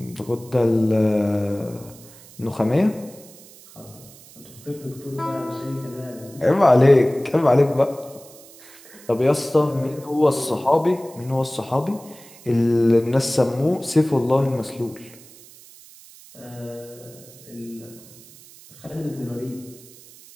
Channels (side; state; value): right; noise; hiss, 21 dB below the sound